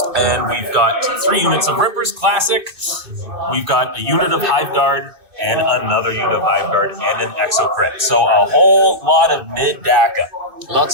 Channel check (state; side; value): late; left; 2.6 ms